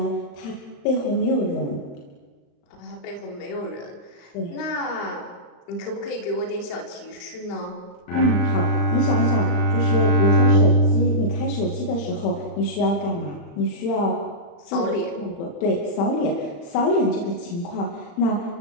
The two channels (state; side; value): late; right; 35 ms